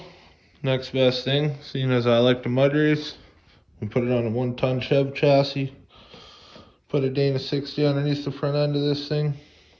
next best thing, seeing as I like to mud race, we put it on a 1-ton Chev chassis. Put a Dana 60 underneath the front end of this thing.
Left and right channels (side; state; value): both; identical; correlation 1.00